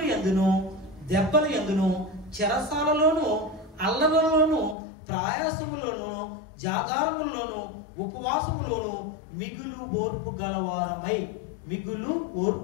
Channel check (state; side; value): drops out; right; at 4.8 s